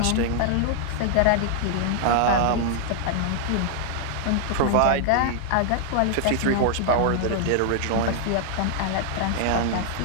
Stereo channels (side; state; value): both; different; correlation -0.01